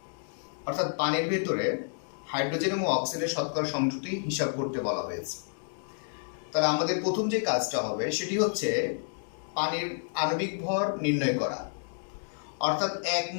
অর্থাৎ পানির ভেতরে হাইড্রোজেন এবং অক্সিজেনের শতকরা সংযুক্তি হিসাব করতে বলা হয়েছে। তাহলে আমাদের প্রথম যে কাজটা হবে সেটি হচ্ছে পানির আণবিক ভর নির্ণয় করা। অর্থাৎ 1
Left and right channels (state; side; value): silent; right; digital silence